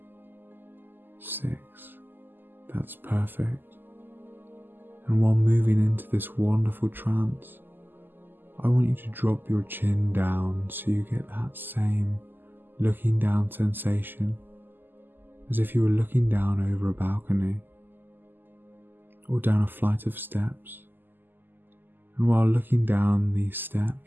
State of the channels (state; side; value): late; left; 0.092 ms